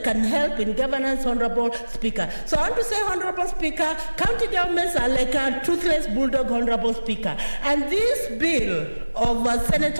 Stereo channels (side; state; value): both; inverted; correlation -1.00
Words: can help in governance, Honorable Speaker. So I want to say, Honorable Speaker, county governments are like a toothless bulldog, Honorable Speaker. And this bill of